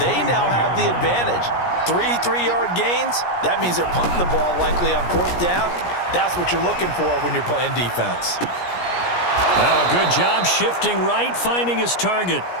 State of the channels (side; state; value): right; late; 17 ms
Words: now have the advantage. 3 3-yard gains, that means they're punting the ball likely on 4th down. That's what you're looking for when you're playing defense. Now a good job shifting right, finding his target.